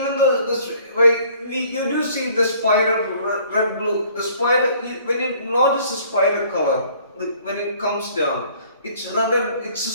though you do see the spider red blue, the spider, when you notice the spider color, when it comes down, it's red and it's a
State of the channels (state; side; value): inverted; both; correlation -0.57